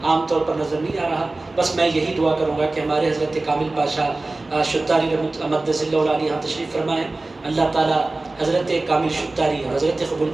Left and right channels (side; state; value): left; quieter; 3.1 dB